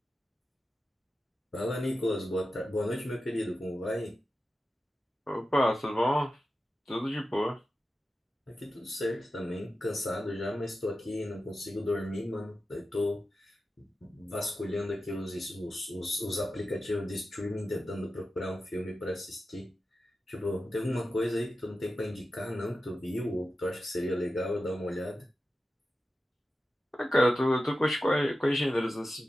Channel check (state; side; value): normal; both; correlation 0.92